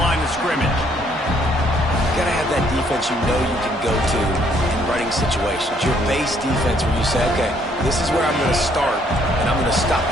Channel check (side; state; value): both; normal; correlation 0.66